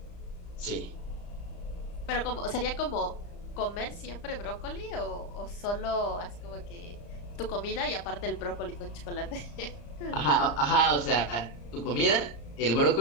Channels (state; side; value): late; right; 34 ms